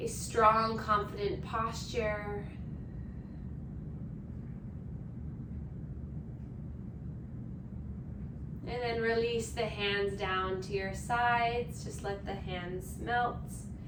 strong, confident posture. And then release the hands down to your sides. Just let the hands melt.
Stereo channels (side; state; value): both; identical; correlation 1.00